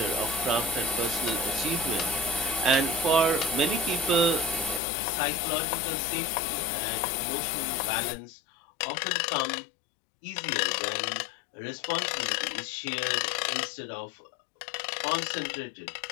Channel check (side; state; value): right; drops out; at 4.8 s